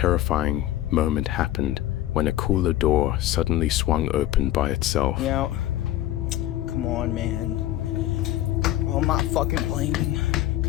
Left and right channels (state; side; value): quieter; right; 14.1 dB